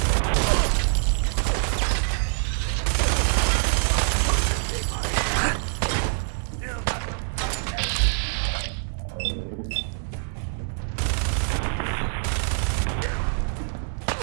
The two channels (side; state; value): left; silent; digital silence